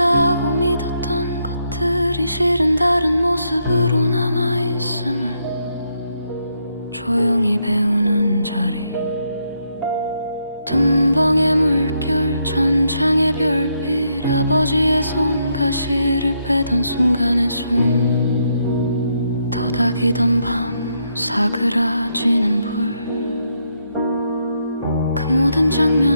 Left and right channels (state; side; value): inverted; both; correlation -0.78